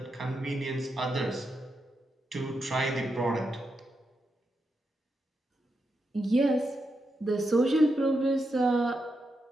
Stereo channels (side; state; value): both; normal; correlation 0.85